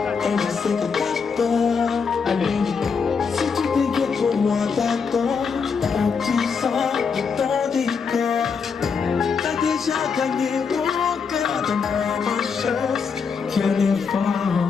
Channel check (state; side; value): quieter; right; 5.7 dB